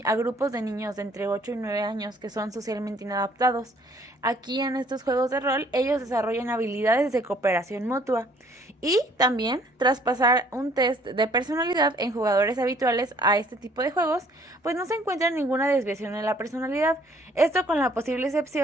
a grupos de niños de entre 8 y 9 años que son socialmente inadaptados. Aquí en estos juegos de rol ellos desarrollan habilidades de cooperación mutua y también traspasar un test de personalidad en jugadores habituales a este tipo de juegos, pues no se encuentra ninguna desviación en la personalidad. Esto con la posible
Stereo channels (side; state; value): both; normal; correlation 0.60